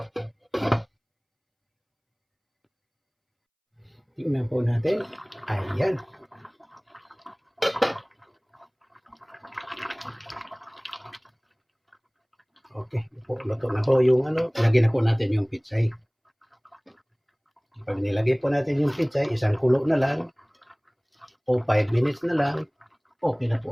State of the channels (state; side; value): identical; both; correlation 1.00